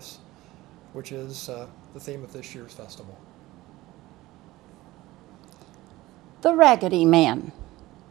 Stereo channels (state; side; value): quieter; left; 18.1 dB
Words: which is the theme of this year's festival. The Raggedy Man.